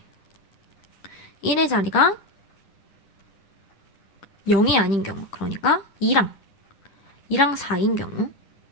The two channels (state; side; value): late; right; 10 ms